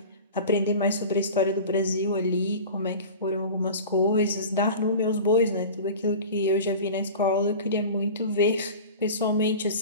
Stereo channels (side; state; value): both; inverted; correlation -0.35